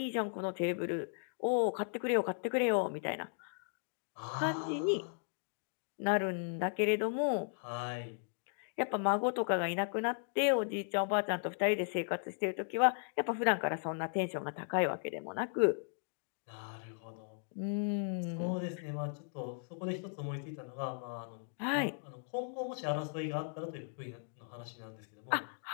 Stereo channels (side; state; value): right; silent; digital silence